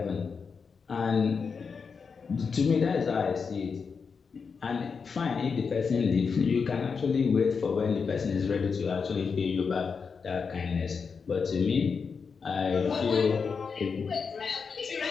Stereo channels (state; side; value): quieter; right; 5.5 dB